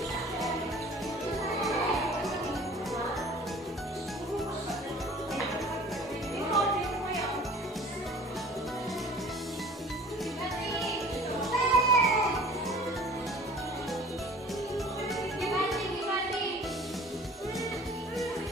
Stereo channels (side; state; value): both; normal; correlation 0.47